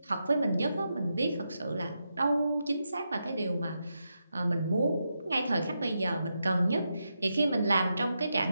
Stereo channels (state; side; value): inverted; both; correlation -0.86